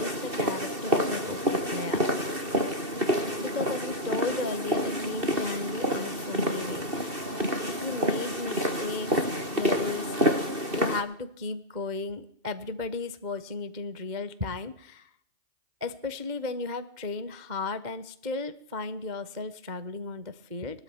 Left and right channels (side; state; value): left; late; 2.7 ms